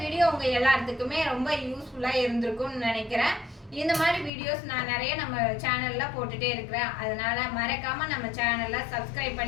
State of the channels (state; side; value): drops out; right; at 4.3 s